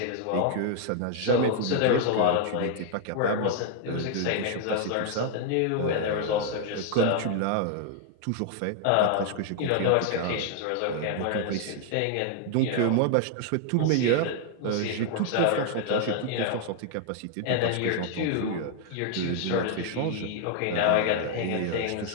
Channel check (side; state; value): both; different; correlation 0.00